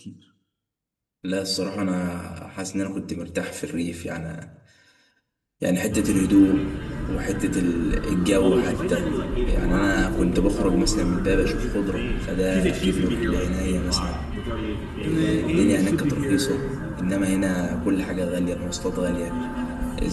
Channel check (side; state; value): both; identical; correlation 1.00